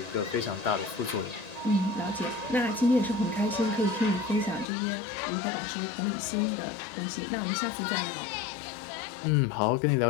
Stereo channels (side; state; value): right; drops out; at 4.7 s